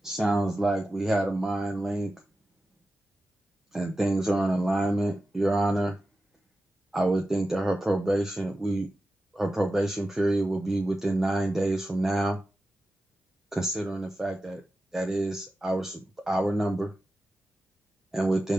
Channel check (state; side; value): normal; both; correlation 0.93